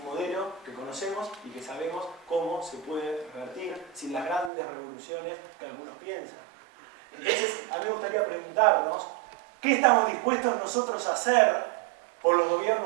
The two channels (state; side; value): drops out; left; at 4.5 s